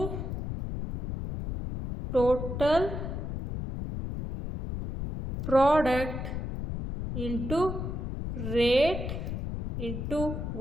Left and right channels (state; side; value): noise; left; rumble, 4 dB below the sound